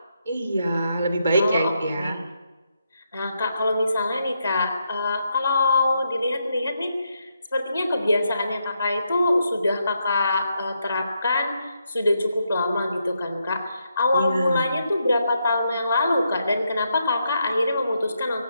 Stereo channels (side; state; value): both; inverted; correlation -0.80